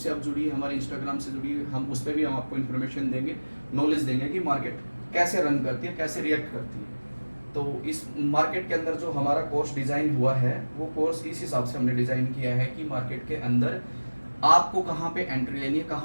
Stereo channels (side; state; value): both; inverted; correlation -1.00